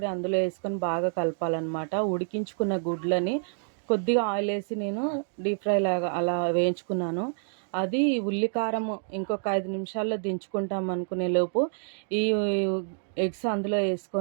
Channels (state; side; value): silent; left; digital silence